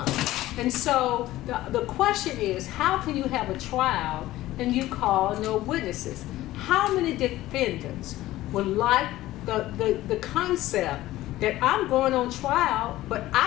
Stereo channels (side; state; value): right; quieter; 16.0 dB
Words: And so the question is, how can you have a trial and you call no witnesses? How many defendants would like the concept that I'm going on trial, but